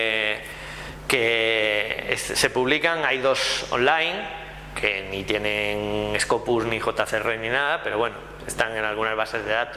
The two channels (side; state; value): both; identical; correlation 1.00